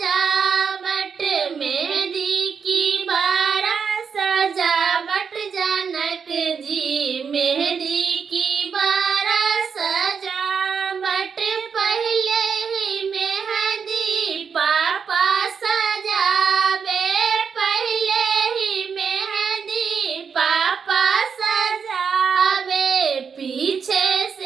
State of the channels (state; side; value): quieter; left; 6.3 dB